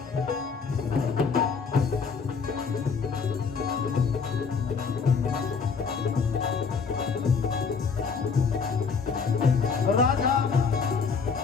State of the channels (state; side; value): quieter; right; 5.4 dB